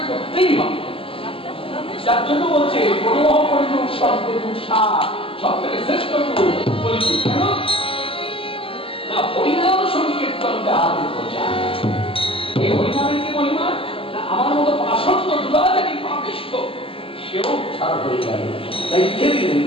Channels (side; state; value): right; late; 0.26 ms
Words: করতেই হবে। যার জন্য বলছে প্রণহ কলিযুগ সর্বযুগ সার, সব থেকে শ্রেষ্ঠ কলিযুগ। কেন না? হরিনাম সংকীর্তন যাহাদের প্রচার। এই হরিনামের কি মহিমা না? আমার মতো আসন্ন দুরাচারী পাপিষ্ঠ সেও ছাড়া হয়ে গেল। তাই লিখে দিলেন